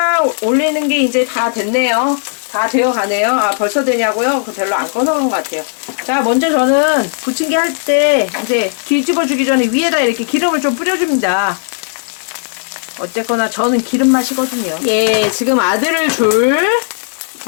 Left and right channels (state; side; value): silent; right; digital silence